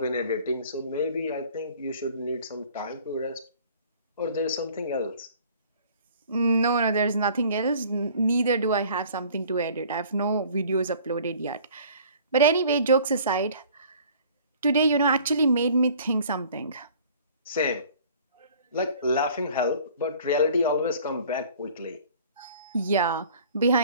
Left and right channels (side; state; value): both; inverted; correlation -0.51